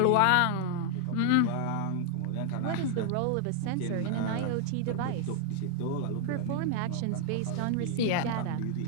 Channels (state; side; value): different; both; correlation 0.00